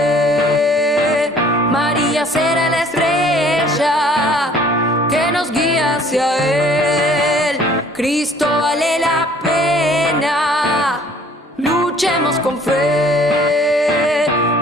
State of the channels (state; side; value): normal; both; correlation 0.55